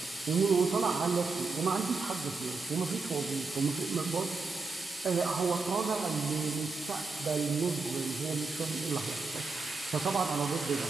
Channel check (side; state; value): left; quieter; 4.0 dB